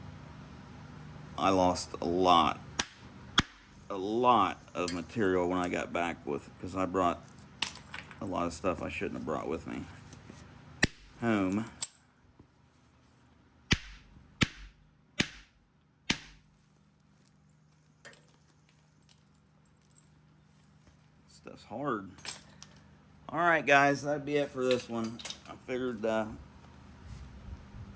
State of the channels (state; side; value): identical; both; correlation 1.00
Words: I lost a lot of material when I got back because I brought a lot of stuff I shouldn't have brought with me home. Stuff's hard. Alright guys, that'd be it for this one. I figured you